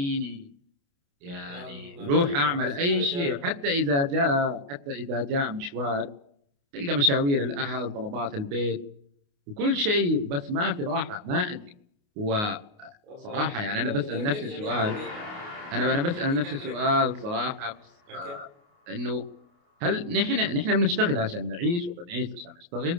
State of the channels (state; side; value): late; left; 28 ms